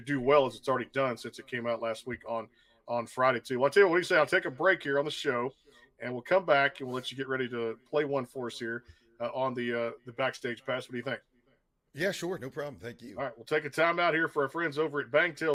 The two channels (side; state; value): both; identical; correlation 1.00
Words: well as it's already done since it came out last week on Friday too. Well, I'll tell you what do you say? I'll take a break here on the show, and we'll come back and we'll let you get ready to play one for us here on the Backstage Pass. What do you think? Yeah, sure. No problem. Thank you. All right, we'll take a time out here for our friends over at